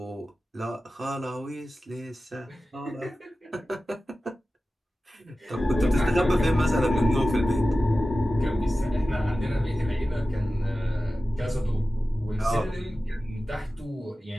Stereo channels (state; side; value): normal; both; correlation 0.95